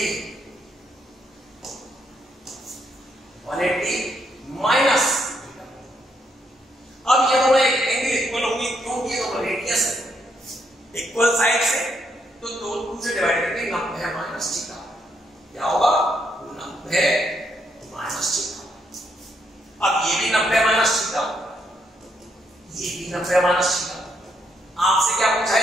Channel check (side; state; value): both; normal; correlation 0.76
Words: माइनस। अब ये दोनों एक एंगल इक्वल होगी क्योंकि ये दोनों रेडियस है इक्वल साइड से, तो 2 से डिवाइड करके 90 माइनस थीटा क्या होगा 90 माइनस थीटा। अब ये भी 90 माइनस थीटा, ये भी 90 माइनस थीटा। आपसे क्या पूछा